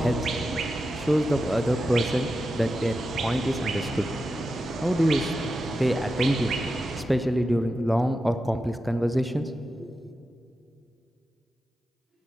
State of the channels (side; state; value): both; normal; correlation 0.90